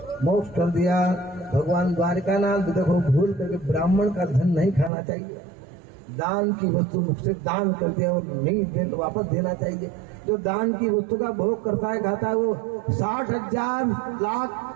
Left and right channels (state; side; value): drops out; left; at 4.9 s